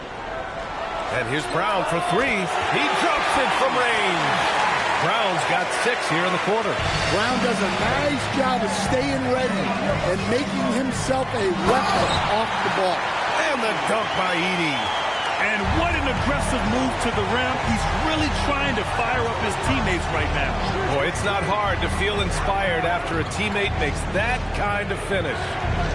And here's Brown for three. He drops it from range. Brown's got 6 here in the quarter. Brown does a nice job of staying ready and making himself a weapon off the ball. And the dunk by Edey. And what an aggressive move to the rim. He's really trying to fire up his teammates right now. Boy, it's not hard to feel inspired after a teammate makes that kind of finish.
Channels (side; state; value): both; identical; correlation 1.00